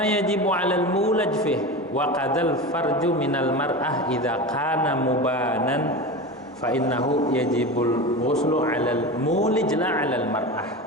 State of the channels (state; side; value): normal; both; correlation 0.27